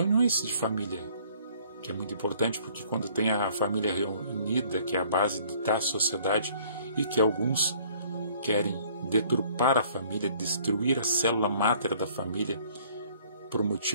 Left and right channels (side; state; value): both; inverted; correlation -0.58